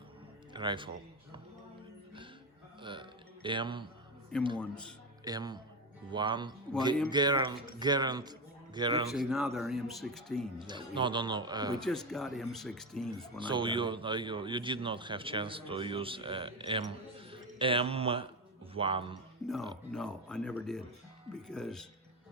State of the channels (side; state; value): both; normal; correlation 0.15